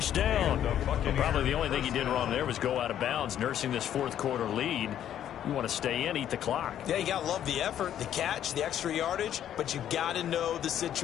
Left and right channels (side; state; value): right; quieter; 10.6 dB